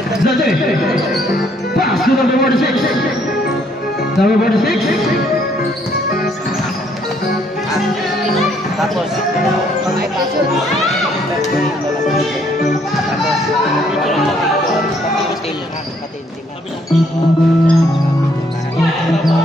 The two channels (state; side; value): normal; both; correlation 0.67